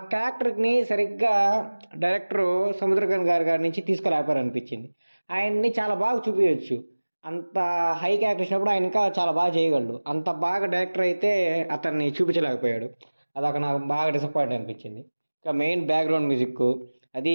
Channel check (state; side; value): inverted; both; correlation -1.00